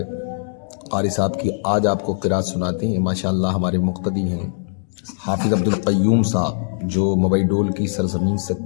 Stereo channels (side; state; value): right; silent; digital silence